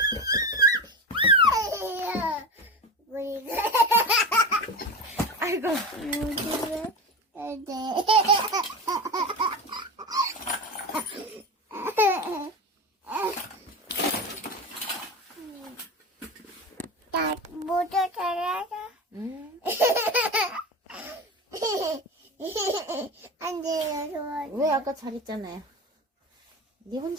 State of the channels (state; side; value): normal; both; correlation 0.25